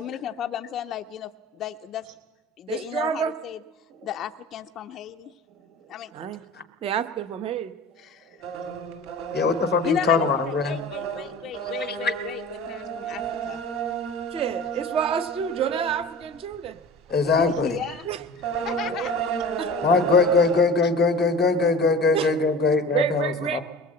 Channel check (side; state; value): both; normal; correlation 0.38